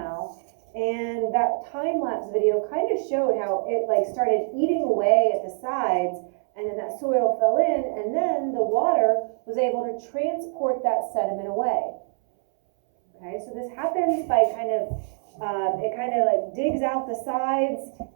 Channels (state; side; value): silent; left; 62 dB below the other